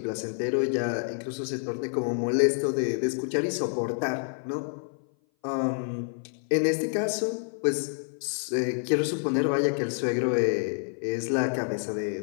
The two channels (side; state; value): right; silent; 57 dB below the other